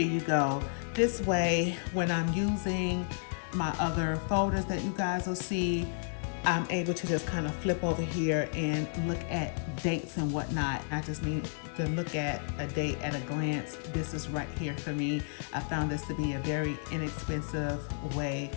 you go. This way, when I'm using my other folders that you guys will see, I'm able to just kind of flip over here and look at dates and whatnot. I just need to look at a date at a glance. This is right here for me. I found this to be a very inexpensive way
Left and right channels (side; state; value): right; silent; digital silence